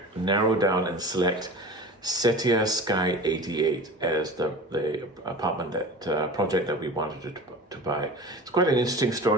narrow down and select Setia Sky 88 as the apartment project that we wanted to buy? It's quite an interesting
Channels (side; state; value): both; normal; correlation 0.36